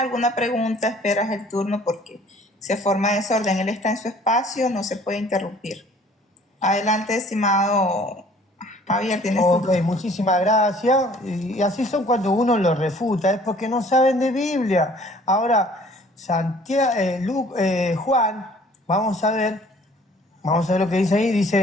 pregunta, esperas el turno porque se forma desorden. Él está en su espacio, no se puede interrumpir. Adelante, estimado Javier, tienes Ok, muchísimas gracias. Y así son cuando uno lo refuta, es porque no saben de Biblia. Ahora, Juan, vamos a ver lo que dice ahí.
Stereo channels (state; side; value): normal; both; correlation 0.54